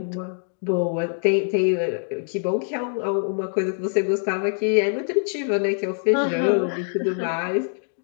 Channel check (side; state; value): right; silent; digital silence